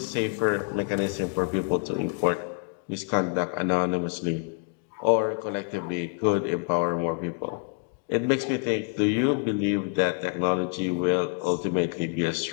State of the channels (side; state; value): right; quieter; 37.3 dB